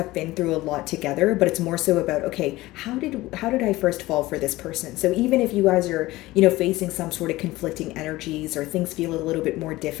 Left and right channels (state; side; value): quieter; right; 18.4 dB